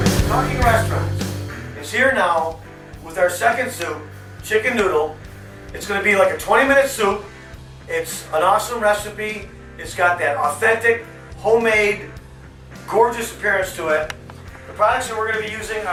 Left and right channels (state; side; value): identical; both; correlation 1.00